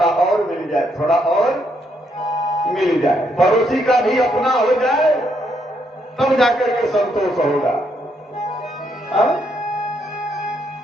और मिल जाए, थोड़ा और मिल जाए, पड़ोसी का भी अपना हो जाए तब जाकर के संतोष होगा। हाँ?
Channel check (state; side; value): normal; both; correlation 0.75